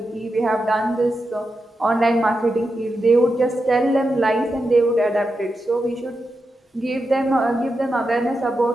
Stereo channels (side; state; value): both; normal; correlation 0.88